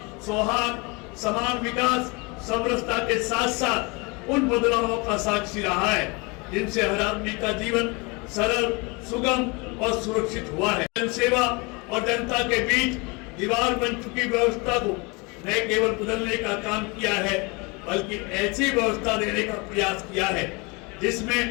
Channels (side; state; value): right; quieter; 28.3 dB